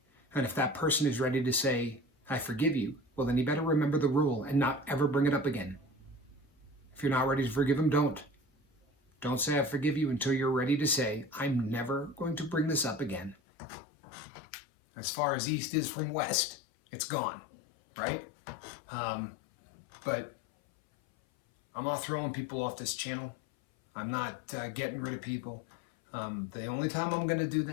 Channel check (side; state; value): right; drops out; at 13.4 s